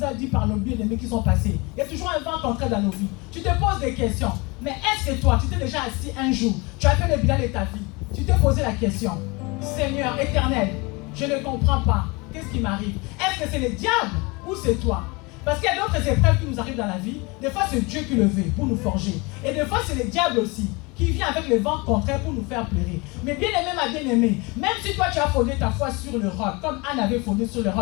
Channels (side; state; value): right; quieter; 26.7 dB